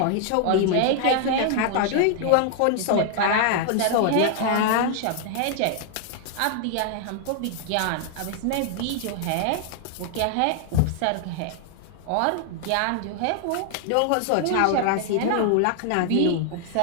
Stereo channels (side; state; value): both; different; correlation 0.00